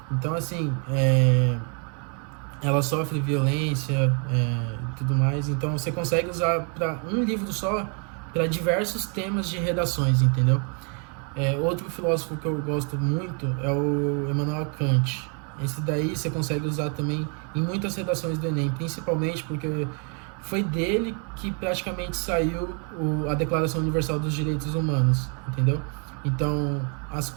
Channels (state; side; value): quieter; left; 38.0 dB